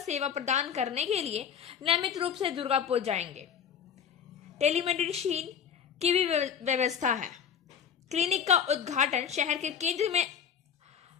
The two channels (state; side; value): quieter; right; 7.8 dB